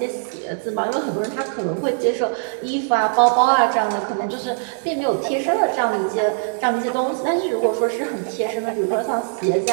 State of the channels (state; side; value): silent; left; digital silence